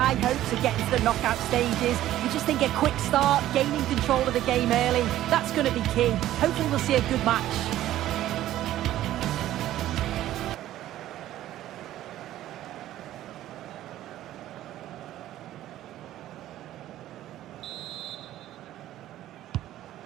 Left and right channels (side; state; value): left; quieter; 13.5 dB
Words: hopes of getting to the knockout stages. We just think a quick start, gaining control of the game early, that's going to be key. Hopefully we'll see a good match.